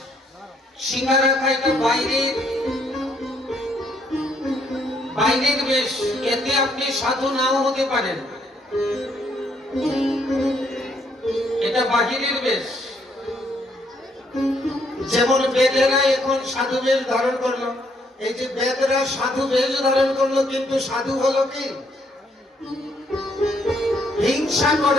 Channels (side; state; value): both; normal; correlation 0.70